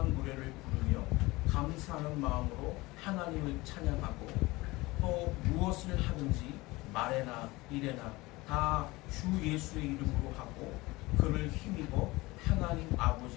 노래를 부르며 감사하는 마음으로 하나님을 찬양하고 또 무엇을 하든지 말에나 일에나 다 주 예수의 이름으로 하고 그를 힘입어 하나님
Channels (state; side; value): quieter; right; 21.4 dB